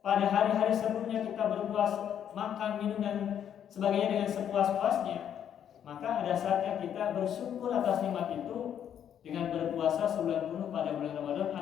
Pada hari-hari sebelumnya kita berpuas, makan, minum dan sebagainya dengan sepuas-puasnya, maka ada saatnya kita bersyukur atas nikmat itu dengan berpuasa sebulan penuh pada bulan Ramadan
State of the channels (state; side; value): quieter; right; 9.3 dB